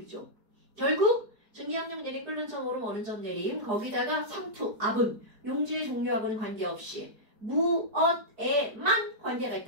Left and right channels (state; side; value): late; left; 5.0 ms